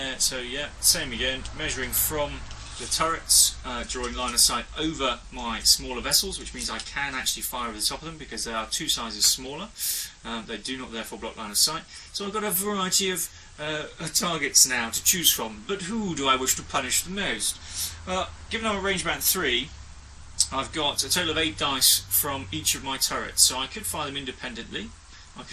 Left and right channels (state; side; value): identical; both; correlation 1.00